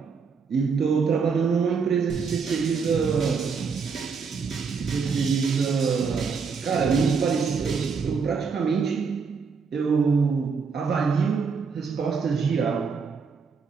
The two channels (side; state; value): left; quieter; 5.4 dB